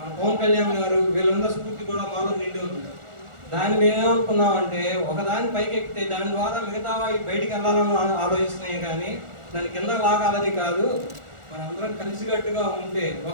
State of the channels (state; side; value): late; left; 1.4 ms